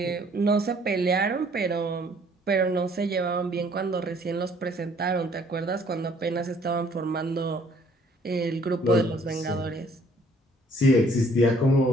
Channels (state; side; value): normal; both; correlation 0.60